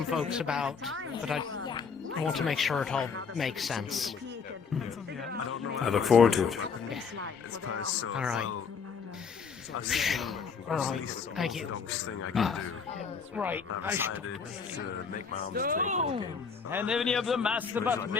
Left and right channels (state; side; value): quieter; right; 5.7 dB